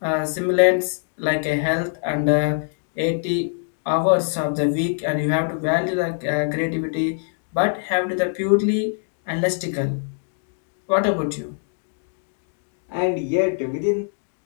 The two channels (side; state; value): right; silent; 63 dB below the other